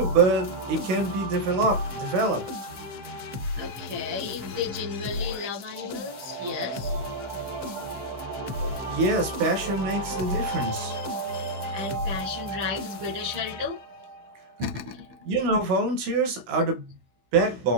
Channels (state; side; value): late; left; 16 ms